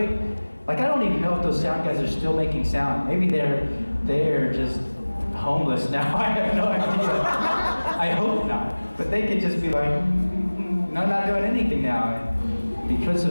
like, I don't even know if those sound guys are still making sound. Maybe they're just homeless now. I have no idea. I hope not. But they could just be like, no, I'm not doing anything now. And because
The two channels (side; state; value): both; inverted; correlation -1.00